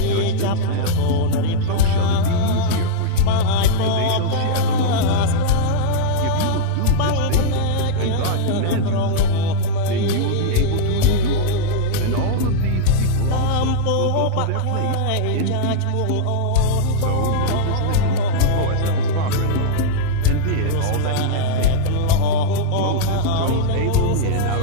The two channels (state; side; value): different; both; correlation -0.02